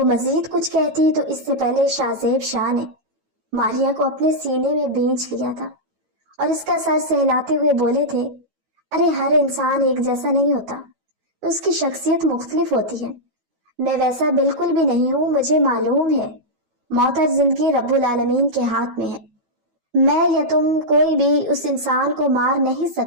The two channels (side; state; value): left; late; 12 ms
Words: مزید کچھ کہتی تو اس سے پہلے شاہ زیب شاہ نے ماریا کو اپنے سینے میں بھینچ لیا تھا اور اس کا سر سہلاتے ہوئے بولے تھے، ارے ہر انسان ایک جیسا نہیں ہوتا، اس کی شخصیت مختلف ہوتی ہے، میں ویسا بالکل بھی نہیں ہوں، مجھے معلوم ہے موت اور زندگی رب العالمین کے ہاتھ میں ہے، میں یا تم کوئی بھی اس انسان کو مار نہیں